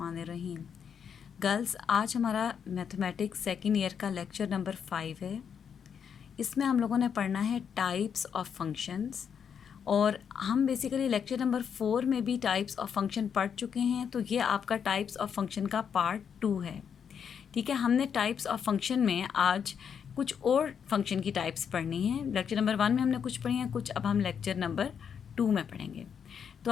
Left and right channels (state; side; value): quieter; right; 7.4 dB